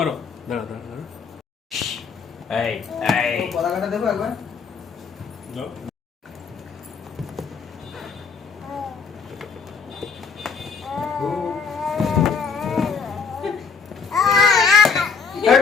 দাঁড়া দাঁড়া দাঁড়া, এই এই কলাকাটা দেবো একবার। দাও।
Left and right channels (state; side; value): quieter; right; 5.5 dB